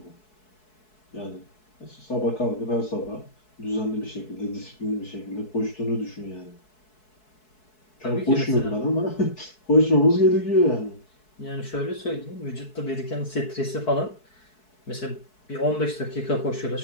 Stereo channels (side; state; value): right; late; 4.7 ms